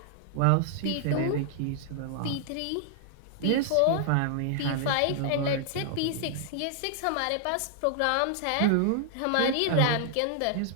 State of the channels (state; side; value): different; both; correlation 0.00